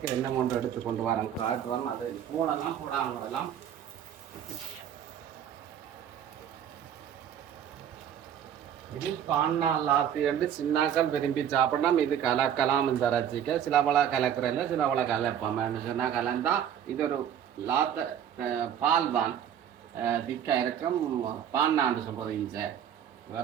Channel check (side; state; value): left; quieter; 9.4 dB